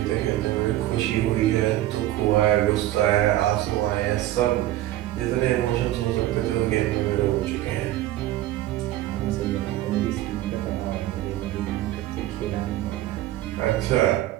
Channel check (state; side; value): quieter; left; 14.6 dB